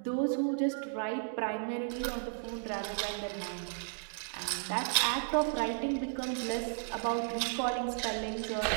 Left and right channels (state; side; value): silent; left; digital silence